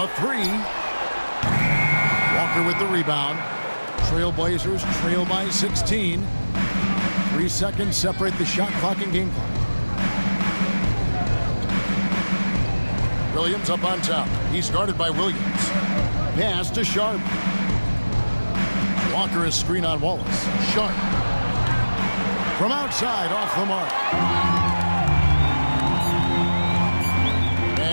3. Walker with the rebound. Trailblazers trail by 16. 3 seconds separate the shot clock and game clock. Williams up on top. He's guarded by Williams. Pass to Sharp. Walker is screen on Wallace. Sharp. From outside, off the mark.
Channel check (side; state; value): both; inverted; correlation -1.00